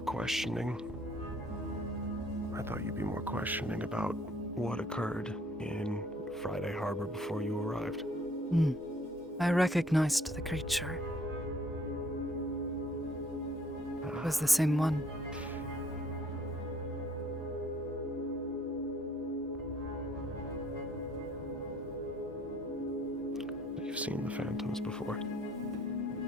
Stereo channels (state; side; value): normal; both; correlation 0.61